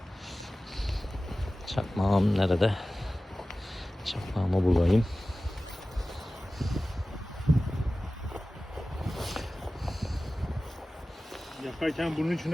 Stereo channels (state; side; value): normal; both; correlation 0.96